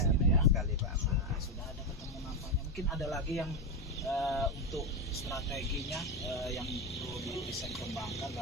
ini benar ya. sekali Pak Ahmad. Oke, sudah ada ketemu nampaknya. Mungkin ada lagi yang untuk strateginya yang perlu bisa dikembangkan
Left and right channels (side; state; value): both; normal; correlation 0.11